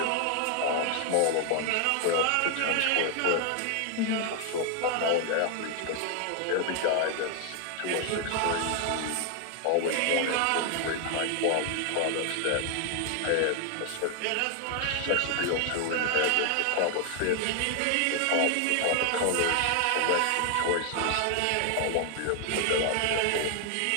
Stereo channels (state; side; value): different; both; correlation 0.00